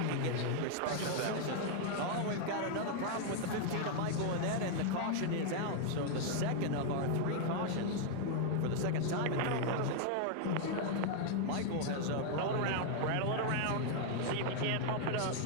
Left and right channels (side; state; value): both; different; correlation 0.00